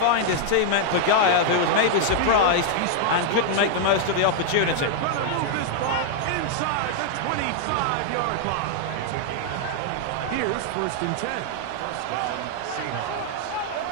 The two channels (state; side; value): different; both; correlation 0.00